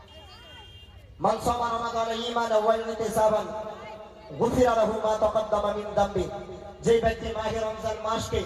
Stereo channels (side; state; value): both; identical; correlation 1.00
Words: মান সামা রমাদান ঈমানান ওয়া ইহতিসাবান গুফিরা লাহু মা তাকাদ্দামা মিন যামবি। যে ব্যক্তি মাহে রমজান মাসকে